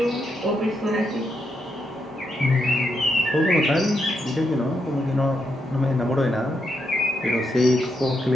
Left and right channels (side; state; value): both; normal; correlation 0.81